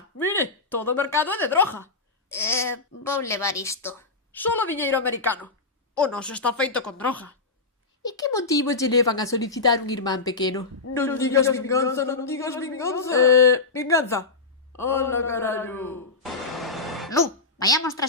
Mire, todo o mercado é de droga. Vou levar isto. Solo diñeiro americano. O noso está feito con droga. E que motivos lle levan a solicitar un irmán pequeno? Non digas vinganza, non digas vinganza. Vinganza. Hola, carallo. Lu, vayamos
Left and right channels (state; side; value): quieter; right; 3.9 dB